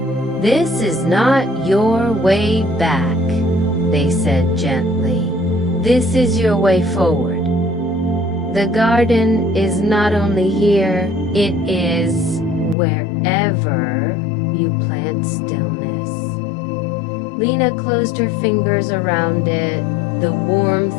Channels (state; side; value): drops out; right; at 12.8 s